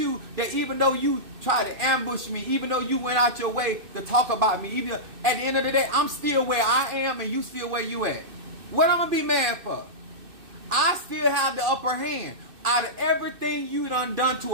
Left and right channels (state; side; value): late; left; 2.6 ms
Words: that even though you tried to ambush me, even though you went out your way to talk about me, even at the end of the day, I'm still where I am and you still where you at. What I'm going to be mad for? I still have the upper hand. Out of everything you done